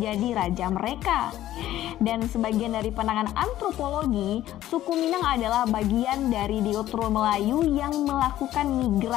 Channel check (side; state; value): right; quieter; 13.5 dB